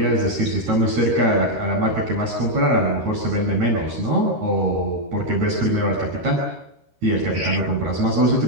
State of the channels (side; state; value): left; late; 13 ms